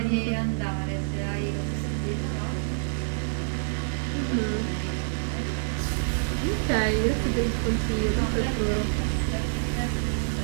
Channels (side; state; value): left; silent; digital silence